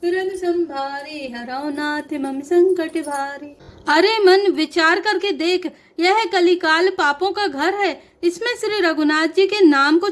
तुरंत संभारे, हरौ नाथ मम संकट भारे। अरे मन, विचार करके देख, यह कलिकाल पापों का घर है। इसमें श्री रघुनाथ जी के नाम को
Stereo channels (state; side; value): identical; both; correlation 1.00